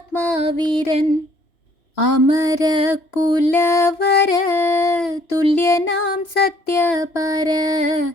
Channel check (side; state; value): right; late; 3.0 ms